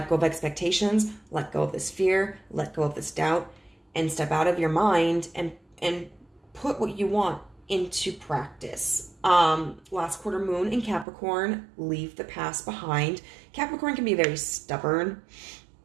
expectations, let go of this fear, let go of this doubt, and step out of your mind and put what you want into practice. Last quarter moon in Capricorn, leave the past behind. Capricorn can be very stubborn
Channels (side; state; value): left; drops out; at 11.1 s